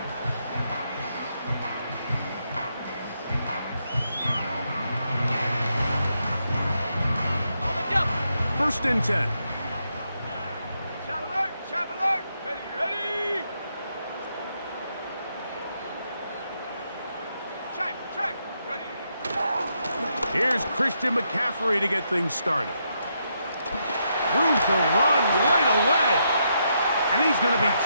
First and 10. Shot alert! Shot alert! Ready, ready! Check! Ready! Here's Christian McCaffrey to get things started. Room to run right away. And he's going to be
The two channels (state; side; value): inverted; both; correlation -0.80